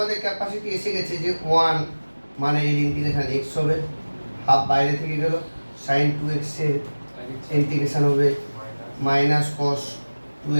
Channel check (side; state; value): both; inverted; correlation -1.00